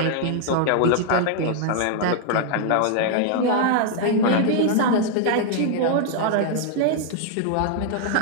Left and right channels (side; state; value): both; different; correlation 0.00